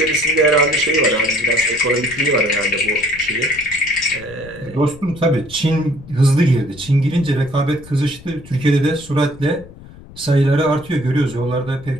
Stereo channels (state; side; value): noise; left; rumble, 19 dB below the sound